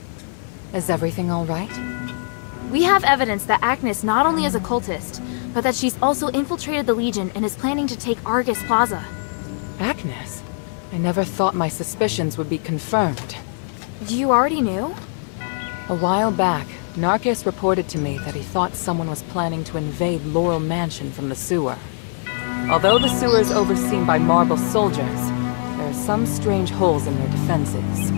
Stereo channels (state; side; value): silent; right; 65 dB below the other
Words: Is everything all right? We have evidence that Agnes not only is a cultist, but that she's also infiltrated the Legion and is planning to take Argus Plaza. Agnes? I never thought my suspicions would be confirmed. You already knew? A while back, Narcus reported to me that he thought someone was planning to invade Laurel Mansion from the sewer. Although the sewer is overseen by Marble soldiers, there are some strange holes in their defenses.